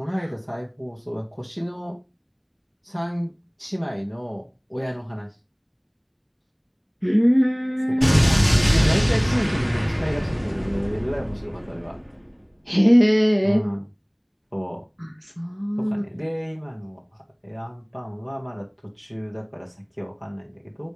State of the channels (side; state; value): both; identical; correlation 1.00